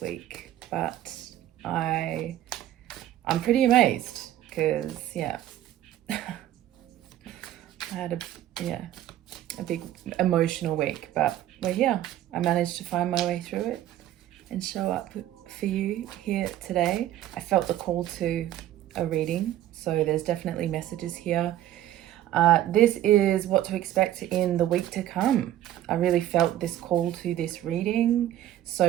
week, but I'm pretty amazed because I had a big emotional week, but we're here. I managed to find my way through it and show up for you here today. I felt the call to a reading, so there's definitely messages here. This is what to expect in the week to come. I really felt this call to this reading.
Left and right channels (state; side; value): quieter; left; 12.8 dB